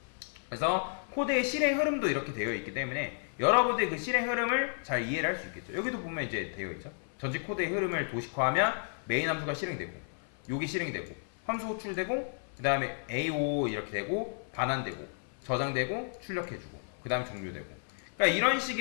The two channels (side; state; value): right; silent; 56 dB below the other